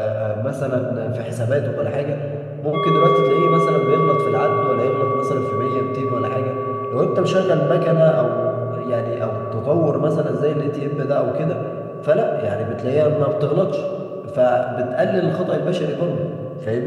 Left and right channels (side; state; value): both; identical; correlation 1.00